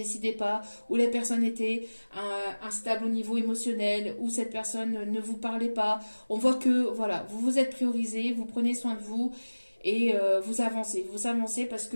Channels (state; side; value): inverted; both; correlation -1.00